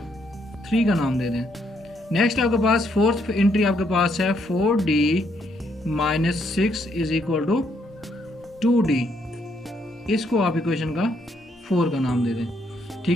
3 का नाम दे दें। नेक्स्ट आपके पास फोर्थ एंट्री आपके पास है 4d - 6 is equal to 2d, इसको आप इक्वेशन का 4 का नाम दे दें।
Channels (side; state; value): both; normal; correlation 0.73